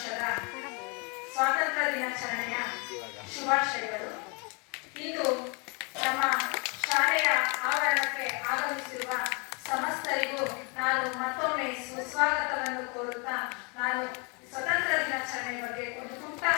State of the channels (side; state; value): right; quieter; 32.7 dB